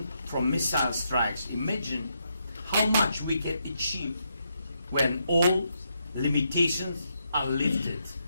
from missile strikes. Imagine how much we can achieve when all limitations are lifted.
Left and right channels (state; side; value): inverted; both; correlation -0.80